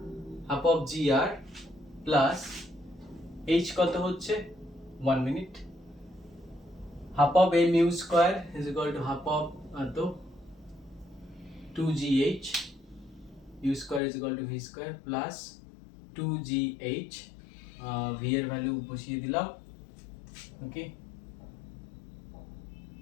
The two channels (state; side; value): drops out; right; at 14.0 s